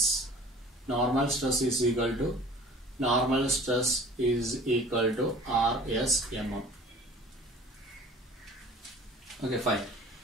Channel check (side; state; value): both; normal; correlation 0.46